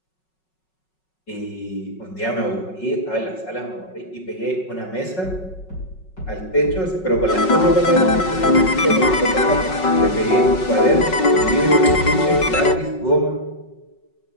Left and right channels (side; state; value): right; late; 5.4 ms